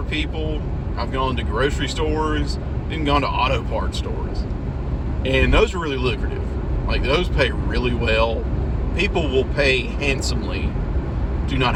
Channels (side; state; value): both; identical; correlation 1.00